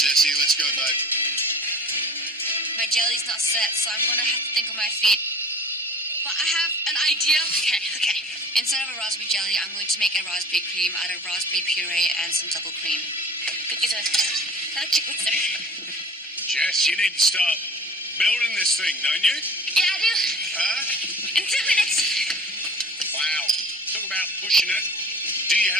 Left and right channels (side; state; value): both; normal; correlation 0.42